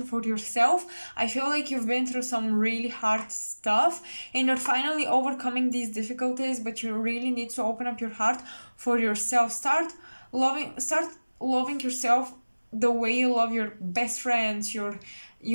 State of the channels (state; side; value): inverted; both; correlation -1.00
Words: for yourself. I feel like you've been through some really hard stuff and you're finally overcoming these difficulties, but you really need to open up your heart for yourself. Start loving yourself the way you love your best friends, your